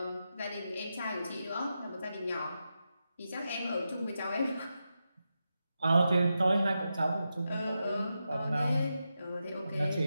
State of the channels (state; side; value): inverted; both; correlation -0.88